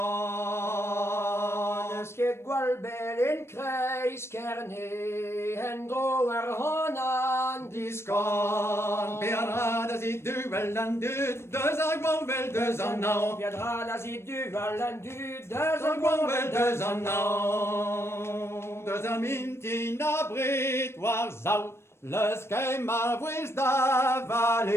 Ske gwal bel in kreis kerne, hen dro ar honan Diskan, Bernard as i duel an dud, deus a gwal bel deus an nao. Viendra la zi du valan du Deus a gwal bel deus an nao. Deus a mintin a brit war zau, leus kem ma vwez da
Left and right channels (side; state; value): right; late; 0.12 ms